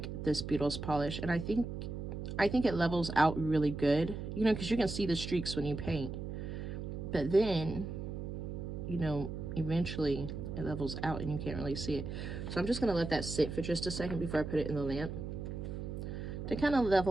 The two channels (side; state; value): right; noise; hum, 6 dB below the sound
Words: this Beetles polish, and I think it levels out really good, you know, because you can see the streaks when you paint. But then, you know, eventually it levels out and you can't really see it. So I'm just going to let that sit for just a second before I put it in the lamp to kind of